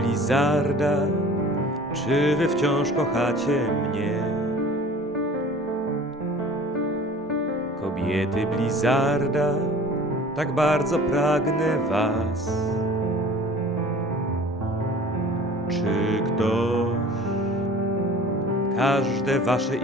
czy wy wciąż kochacie mnie? Kobiety Blizzarda, tak bardzo pragnę was. Czy ktoś każde wasze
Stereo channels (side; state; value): both; normal; correlation 0.45